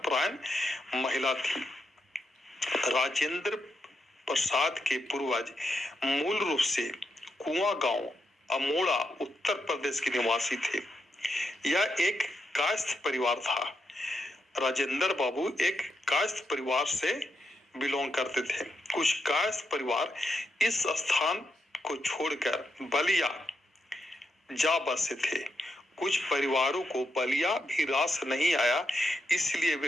महिला थी। राजेंद्र प्रसाद के पूर्वज मूल रूप से कुआं गांव अमोड़ा उत्तर प्रदेश के निवासी थे। यह एक कायस्थ परिवार था। राजेंद्र बाबू एक कायस्थ परिवार से बिलोंग करते थे। कुछ कायस्थ परिवार इस स्थान को छोड़कर बलिया जा बसे थे। कुछ परिवारों को बलिया भी रास नहीं आया, इसलिए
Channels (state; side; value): normal; both; correlation 0.83